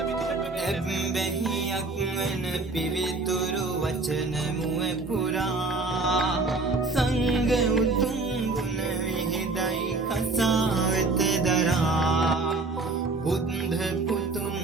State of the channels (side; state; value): left; quieter; 3.5 dB